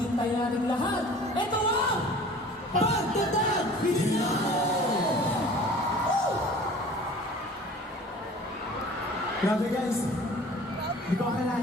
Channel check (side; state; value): both; normal; correlation 0.45